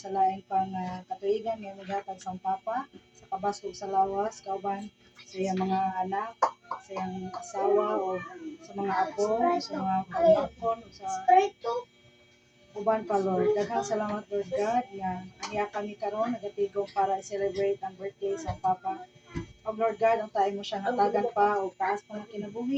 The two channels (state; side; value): identical; both; correlation 1.00